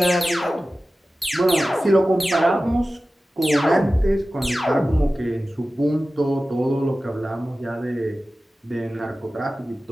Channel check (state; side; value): normal; both; correlation 0.95